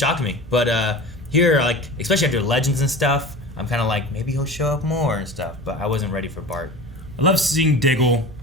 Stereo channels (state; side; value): normal; both; correlation 0.34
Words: me. But here, like, especially after Legends and stuff, I'm kind of like, maybe he'll show up more and stuff. But I wasn't ready for Bart. I love seeing Diggle.